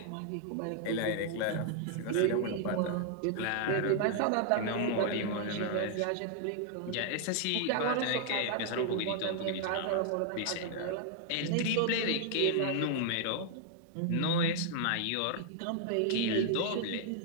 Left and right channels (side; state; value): both; different; correlation 0.00